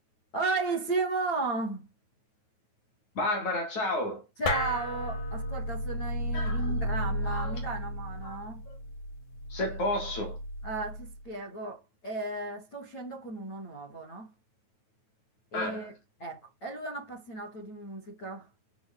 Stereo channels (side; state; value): right; late; 9.2 ms